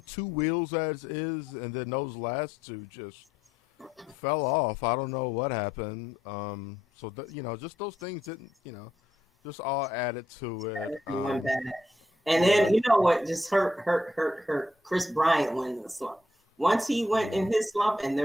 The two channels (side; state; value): both; normal; correlation 0.76